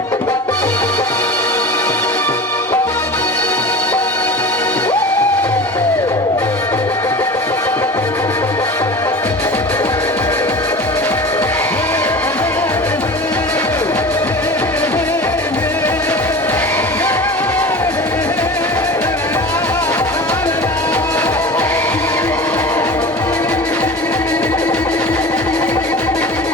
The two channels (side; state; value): both; normal; correlation 0.34